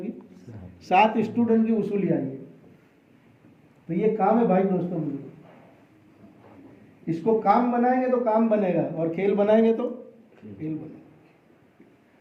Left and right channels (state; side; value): identical; both; correlation 1.00